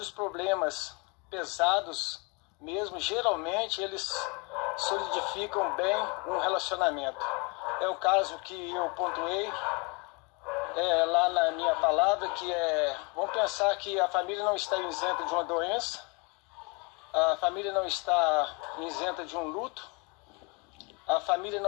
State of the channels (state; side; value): quieter; right; 30.4 dB